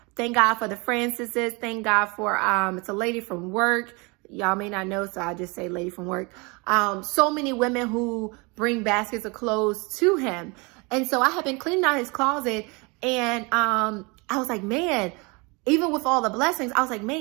Thank God for the Francises. Thank God for, it's a lady from work. Y'all may not know, so I'll just say lady from work. So many women who bring baskets of clothes to him. And so I have been cleaning out his closet and I was like, man, even with all the blessings, I was like,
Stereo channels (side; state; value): left; quieter; 28.5 dB